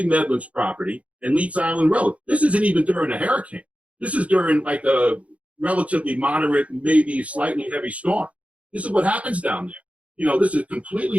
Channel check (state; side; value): late; left; 0.065 ms